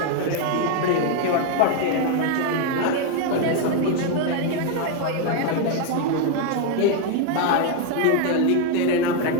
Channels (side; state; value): both; different; correlation 0.01